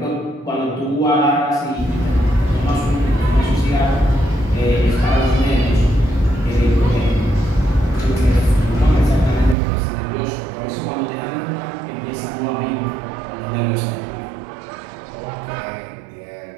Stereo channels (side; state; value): left; drops out; at 9.6 s